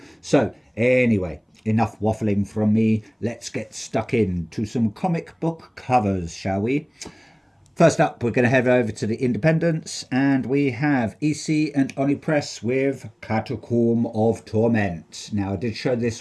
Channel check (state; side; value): identical; both; correlation 1.00